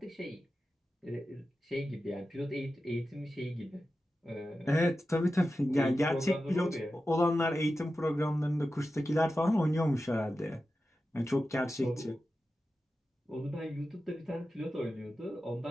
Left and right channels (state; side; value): normal; both; correlation 0.92